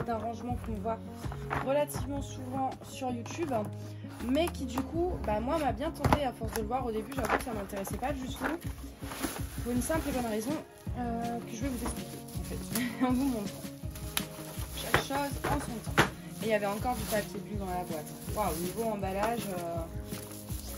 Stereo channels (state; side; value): identical; both; correlation 1.00